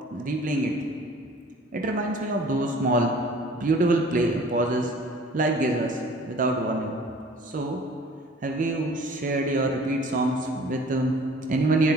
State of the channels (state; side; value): normal; both; correlation 0.49